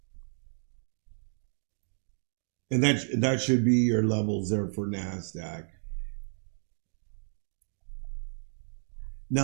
And that should be your levels there for NASDAQ.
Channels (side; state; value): left; silent; digital silence